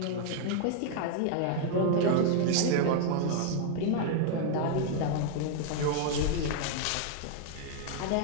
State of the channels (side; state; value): both; different; correlation 0.00